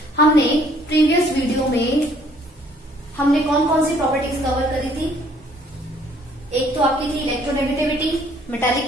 हमने previous video में हमने कौन कौन सी properties cover करी थी? एक तो आपकी थी electronegativity, metallic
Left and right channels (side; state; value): both; normal; correlation 0.61